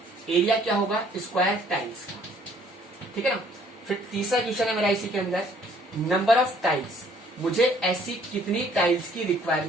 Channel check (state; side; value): normal; both; correlation 0.60